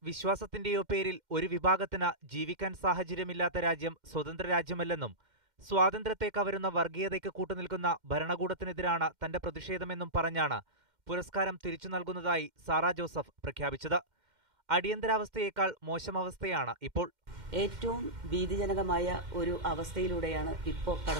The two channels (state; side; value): late; left; 2.1 ms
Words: വിശ്വാസത്തിന്റെയോ പേരിൽ ഒരു വിഭാഗത്തിന് ജീവിക്കാൻ സാഹചര്യമില്ലാത്ത രാജ്യം സ്വതന്ത്ര രാജ്യമല്ലെന്നും സ്വാതന്ത്ര്യത്തെ കവരുന്ന വർഗീയതയ്ക്ക് കൂട്ടുനിൽക്കുന്ന ഭരണകൂടത്തിനെതിരാണ് തന്റെ പ്രതിഷേധമെന്നും പറഞ്ഞാണ് പുരസ്കാരം തിരിച്ചു നൽകുന്നതായി സാറാ ജോസഫ് പ്രഖ്യാപിച്ചത്. അടിയന്തരാവസ്ഥയേക്കാൾ മോശം അവസ്ഥയാണ് ഇപ്പോൾ. ഏറ്റവും ഭീതിജനകമായ ഒരു അവസ്ഥയിലൂടെയാണ് ഇപ്പോൾ